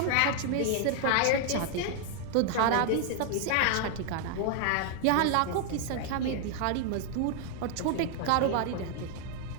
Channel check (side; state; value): both; different; correlation 0.00